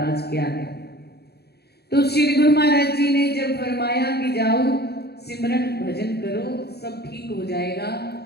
क्या है। तो श्री गुरु महाराज जी ने जब फरमाया कि जाओ सिमरन भजन करो सब ठीक हो जाएगा,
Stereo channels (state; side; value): late; right; 0.47 ms